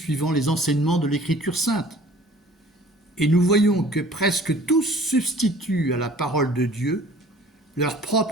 les enseignements de l'Écriture sainte. Et nous voyons que presque tous substituent à la parole de Dieu leurs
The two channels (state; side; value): normal; both; correlation 0.50